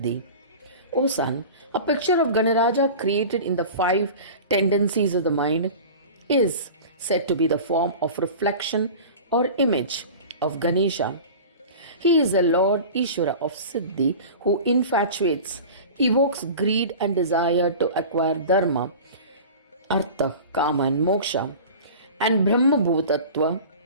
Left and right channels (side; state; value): both; inverted; correlation -0.36